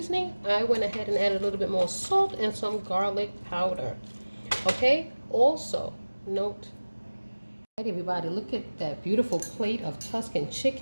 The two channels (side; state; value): both; inverted; correlation -1.00